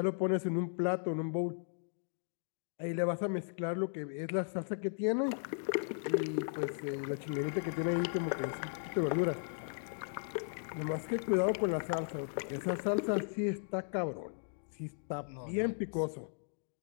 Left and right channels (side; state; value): right; silent; digital silence